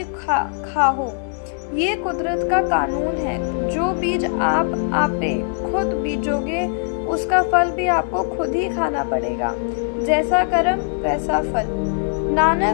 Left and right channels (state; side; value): silent; right; 65 dB below the other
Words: खाओ, ये कुदरत का कानून है। जो बीज आप आपे खुद बीजोगे, उसका फल भी आपको खुद ही खाना पड़ेगा। जैसा कर्म वैसा फल।